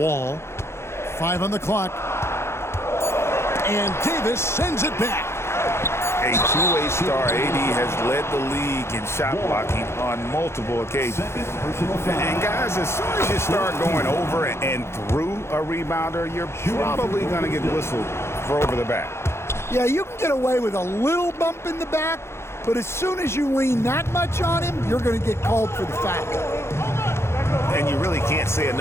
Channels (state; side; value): late; right; 0.13 ms